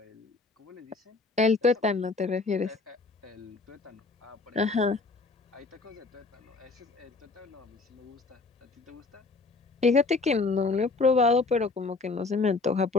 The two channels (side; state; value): right; quieter; 3.9 dB